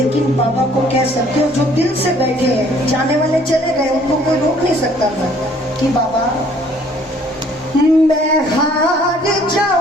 बाबा को कह सकते हो जो दिल से बैठे हैं, जाने वाले चले गए, उनको कोई रोक नहीं सकता था कि बाबा मैं हार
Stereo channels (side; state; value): both; normal; correlation 0.59